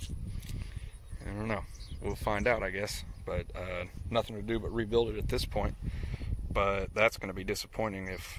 don't know. We'll find out, I guess. But nothing to do but rebuild it at this point. But that's going to be disappointing if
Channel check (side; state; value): both; identical; correlation 1.00